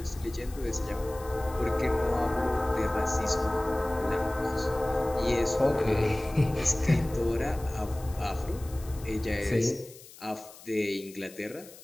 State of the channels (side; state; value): left; noise; hiss, 19 dB below the sound